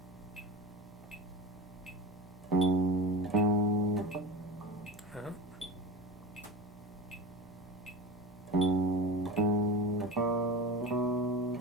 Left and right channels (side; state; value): both; normal; correlation 0.30